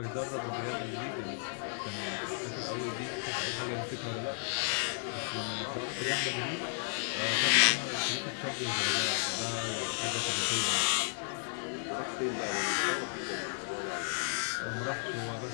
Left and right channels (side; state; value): right; silent; 55 dB below the other